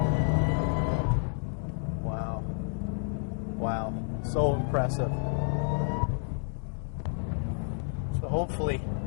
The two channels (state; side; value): silent; right; 58 dB below the other